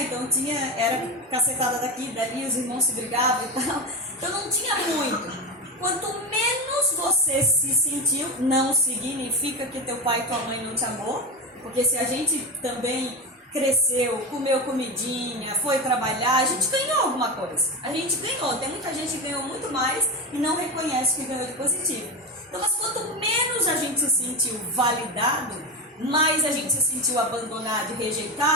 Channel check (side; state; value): both; normal; correlation 0.20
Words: Então era cacetada daqui, dali, os irmãos se brigavam e tal. Então não tinha muito. Quanto menos você se sentiu, não significa que teu pai e tua mãe não te amou. Porque se a gente também cresceu, comeu comidinha, foi trabalhar, a gente ganhou alguma coisa. A gente ganhou. Tem muita gente que ganhou muito mais e não reconhece que ganhou de positivo. Então, mas quanto menos a gente se sentiu validado, mais a gente se sentiu abandonado e